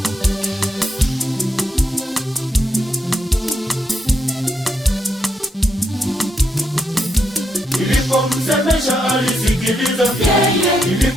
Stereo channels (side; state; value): both; normal; correlation 0.80